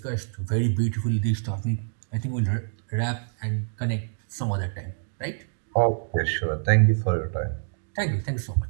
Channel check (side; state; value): left; silent; digital silence